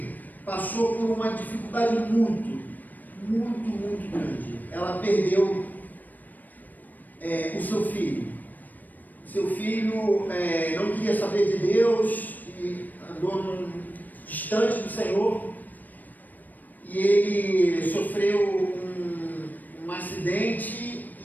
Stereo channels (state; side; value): late; right; 0.085 ms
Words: passou por uma dificuldade muito grande. Ela perdeu o seu filho. Seu filho não queria saber de Deus e andou distante do Senhor, e ele sofreu um acidente,